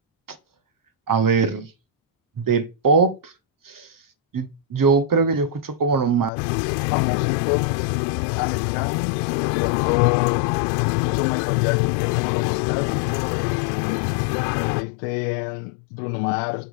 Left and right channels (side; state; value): right; drops out; at 6.3 s